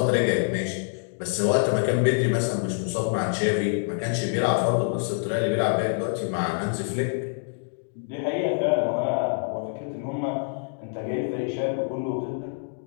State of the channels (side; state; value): right; silent; digital silence